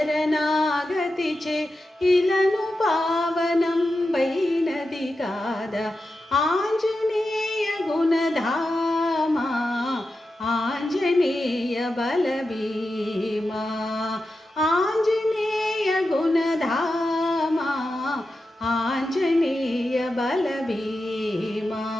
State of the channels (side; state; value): both; normal; correlation 0.90